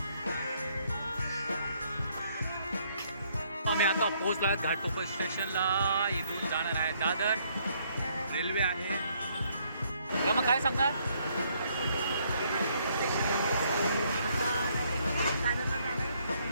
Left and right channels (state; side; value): inverted; both; correlation -0.69